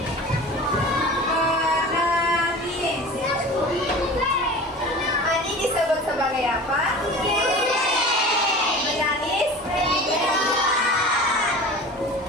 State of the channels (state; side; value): normal; both; correlation 0.37